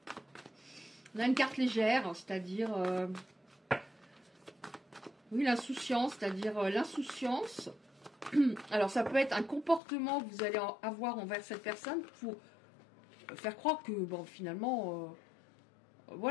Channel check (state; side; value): drops out; right; at 9.8 s